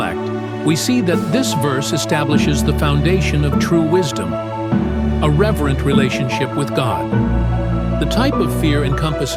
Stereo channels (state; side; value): identical; both; correlation 1.00